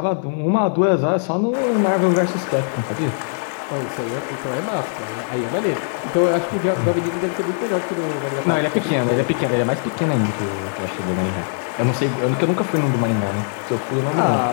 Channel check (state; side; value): silent; right; digital silence